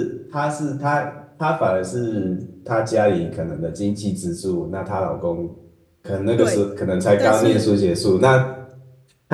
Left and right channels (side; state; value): both; identical; correlation 1.00